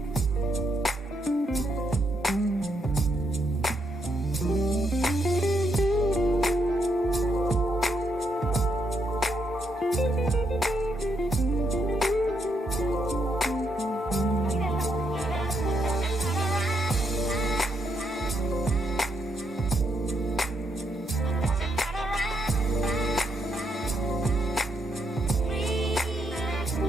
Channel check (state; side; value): normal; both; correlation 0.78